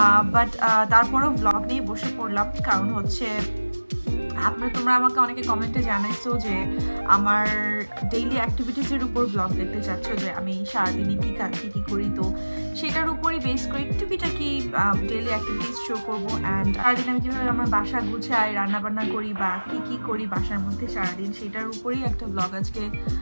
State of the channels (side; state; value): both; inverted; correlation -1.00